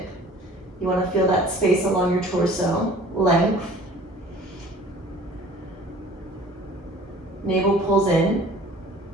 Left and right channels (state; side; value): normal; both; correlation 0.49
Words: You want to feel that space along your torso, length. Navel pulls in.